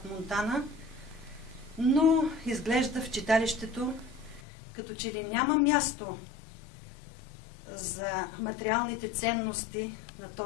Монтана, но изглежда в читалището като че ли няма място за материалните ценности на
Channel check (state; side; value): drops out; right; at 4.4 s